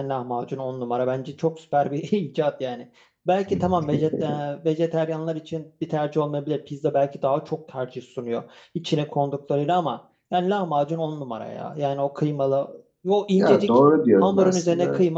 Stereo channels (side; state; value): both; identical; correlation 1.00